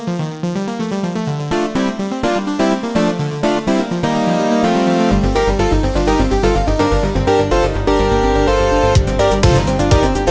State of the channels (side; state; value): both; identical; correlation 1.00